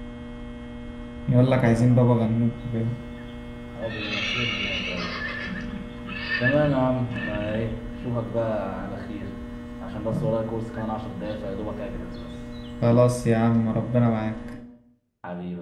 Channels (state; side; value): identical; both; correlation 1.00